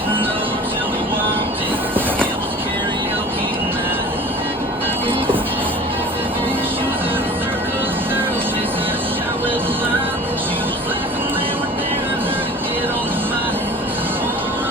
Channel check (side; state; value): both; normal; correlation 0.42